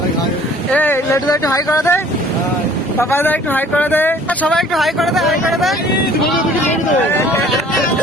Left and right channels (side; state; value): both; normal; correlation 0.53